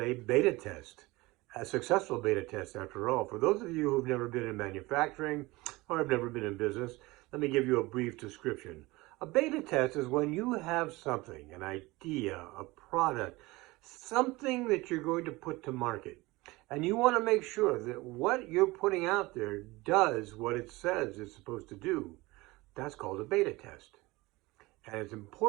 beta test, a successful beta test after all. For those of you who've never been in manufacturing or have never been in business, let me give you a brief description. A beta test is when you have something, an idea, a product, something that you're going to put to market, and you want to make sure that what you're putting out there does what it says it's supposed to do. That's called a beta test. And it's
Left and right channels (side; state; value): left; quieter; 21.5 dB